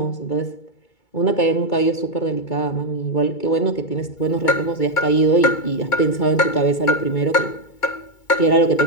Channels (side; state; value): right; late; 2.2 ms